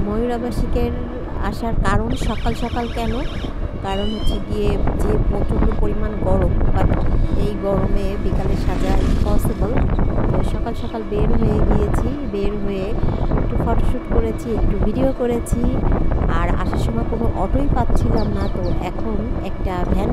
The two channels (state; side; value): identical; both; correlation 1.00